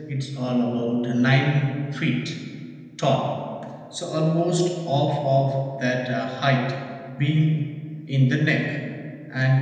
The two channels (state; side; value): identical; both; correlation 1.00